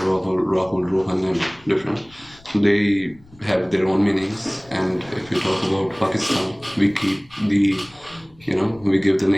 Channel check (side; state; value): left; noise; rumble, 26 dB below the sound